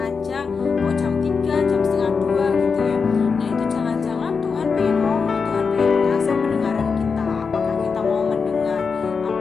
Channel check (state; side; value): quieter; right; 5.3 dB